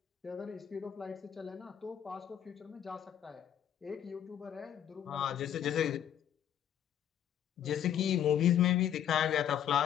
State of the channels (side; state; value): right; quieter; 10.0 dB